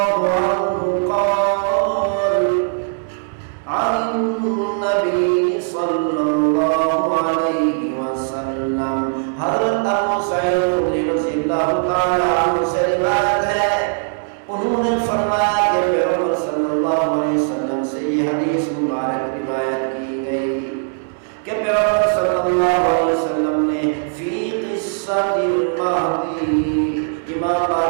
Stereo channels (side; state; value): left; silent; 65 dB below the other